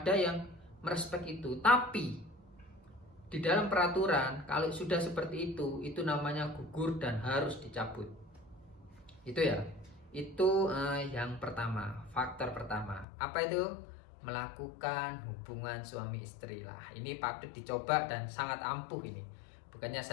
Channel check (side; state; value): right; drops out; at 13.1 s